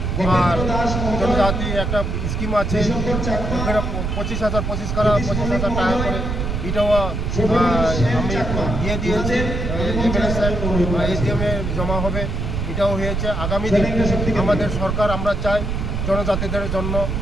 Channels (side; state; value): right; noise; rumble, 2 dB below the sound